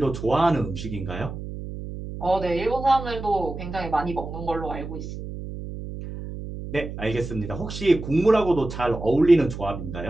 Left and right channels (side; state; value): right; noise; hum, 9 dB below the sound